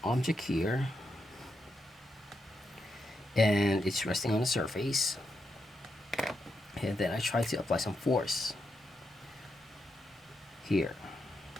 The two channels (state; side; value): normal; both; correlation 0.84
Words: object here and it's resting on the surface, and then I try to apply some force here,